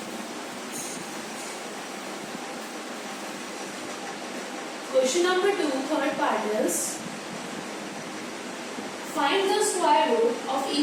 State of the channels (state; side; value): identical; both; correlation 1.00